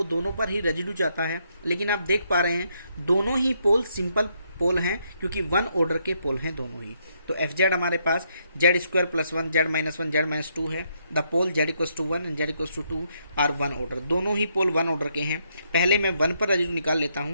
दोनों पर ही रेजिड्यू चाहता है। लेकिन आप देख पा रहे हैं दोनों ही पोल सिंपल पोल हैं, क्योंकि 1 ऑर्डर के पोल हैं दोनों ही। तो FZ हमारे पास Z² + 1 Z - 1 Z - 2 है। The pole Z=1 and Z=2 are 1 order, दोनों ही पोल 1 ऑर्डर के हैं। पहले मैं 1 पर रेजिड्यू निकाल लेता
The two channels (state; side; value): inverted; both; correlation -0.75